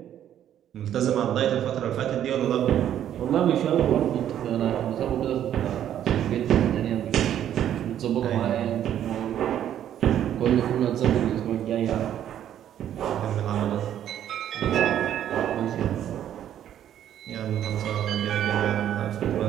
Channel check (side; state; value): left; quieter; 10.7 dB